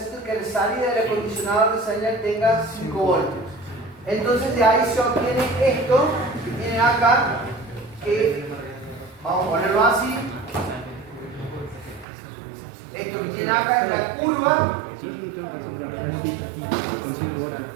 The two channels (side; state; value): left; drops out; at 12.1 s